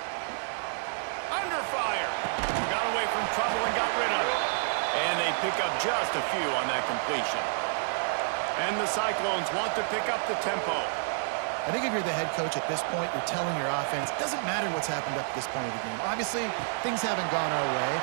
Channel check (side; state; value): left; silent; 58 dB below the other